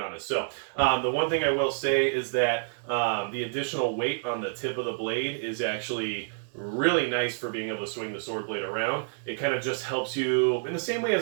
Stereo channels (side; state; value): left; silent; digital silence